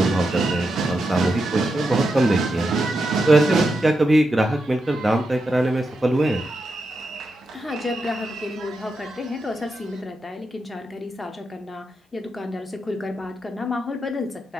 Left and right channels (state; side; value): normal; both; correlation 0.86